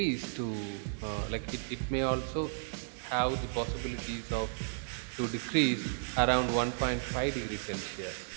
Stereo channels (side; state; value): left; silent; 55 dB below the other